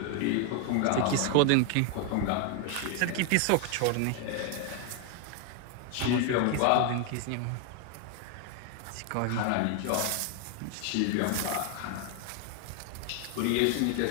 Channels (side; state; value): both; different; correlation 0.00